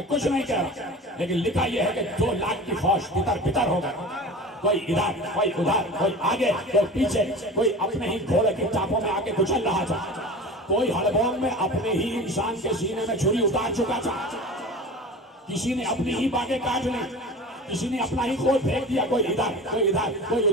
कुछ नहीं कह रहा, लेकिन लिखा यह है कि 2 लाख की फौज तितर बितर हो गई। कोई इधर, कोई उधर, कोई आगे, कोई पीछे, कोई अपने ही घोड़े की चापों में आके कुचल रहा था, कोई हड़बोंग में अपने ही इंसान के सीने में छुरी उतार चुका था, किसी ने अपनी ही बातें काट ली, किसी ने अपना ही कोट फेंक दिया। कोई इधर, कोई इधर, कोई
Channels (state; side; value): normal; both; correlation 0.35